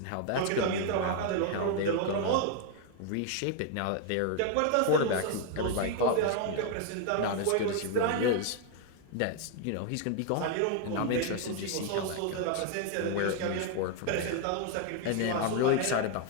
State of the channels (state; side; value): different; both; correlation 0.00